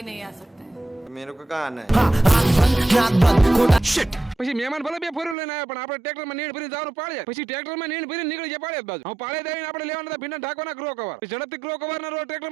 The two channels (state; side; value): drops out; left; at 5.4 s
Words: नहीं आ सकते हैं। मेरे को कहाँ आना है? પછી મહેમાન ભલે બે ફોરવ્હીલર લઈને આવ્યા પણ આપણે ટ્રેક્ટરમાં નીણ ભરીને જવાનું પાડ્યા. પછી ટ્રેક્ટરમાં નીણ ભરીને નીકળી ગયા પાડ્યા બાજુ. હું પાડે દઈને આપણે લેવાના હતા ભીંડા ઢાંકવાના ગ્રો કવર. ઝડપથી ગ્રો કવર ના રોડ